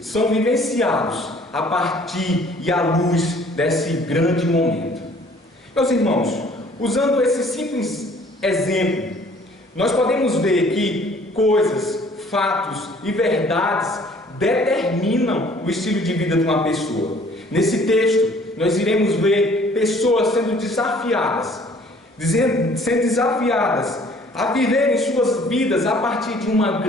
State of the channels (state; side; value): normal; both; correlation 0.56